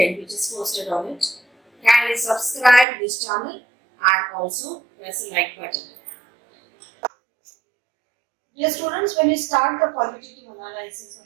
which is posted on it, kindly subscribe this channel and also press the like button. Dear students, when you start the qualitative analysis of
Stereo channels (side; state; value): left; drops out; at 2.9 s